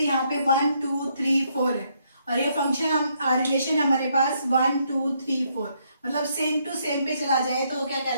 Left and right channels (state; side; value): inverted; both; correlation -0.73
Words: पे 1 2 3 4 है, और ये फंक्शन हम रिलेशन हमारे पास 1 2 3 4, मतलब सेम टू सेम पे चला जाए तो क्या